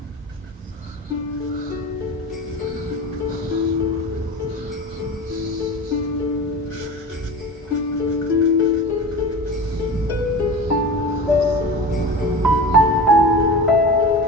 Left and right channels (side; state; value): both; normal; correlation 0.31